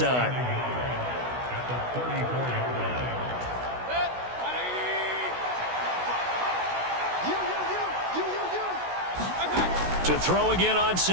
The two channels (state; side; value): late; left; 16 ms